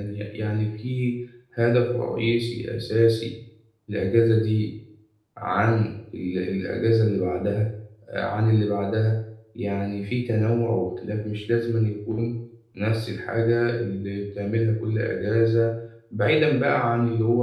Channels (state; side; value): identical; both; correlation 1.00